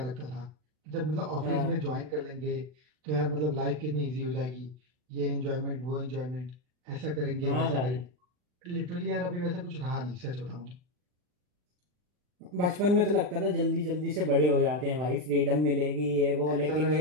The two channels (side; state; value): left; late; 40 ms